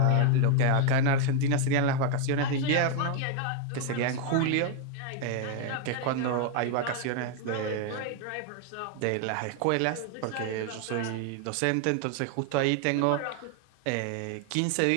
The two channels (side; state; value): both; different; correlation 0.01